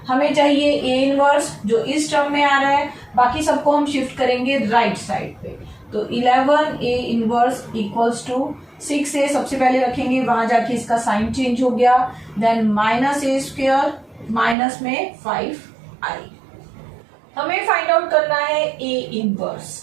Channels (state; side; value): drops out; left; at 14.6 s